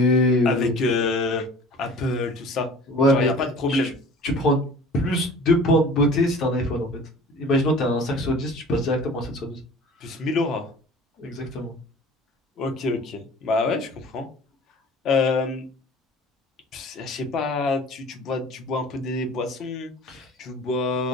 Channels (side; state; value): both; normal; correlation 0.44